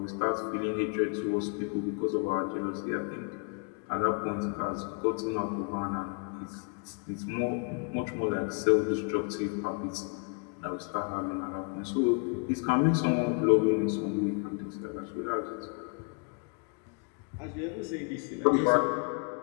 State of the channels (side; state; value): right; quieter; 37.4 dB